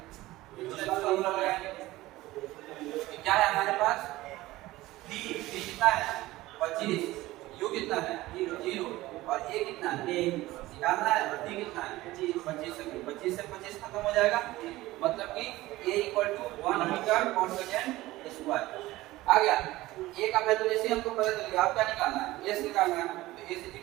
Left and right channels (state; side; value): quieter; left; 17.8 dB